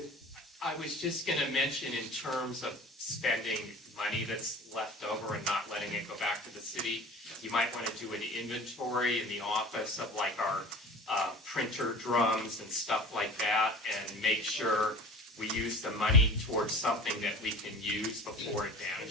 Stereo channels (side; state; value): both; normal; correlation 0.39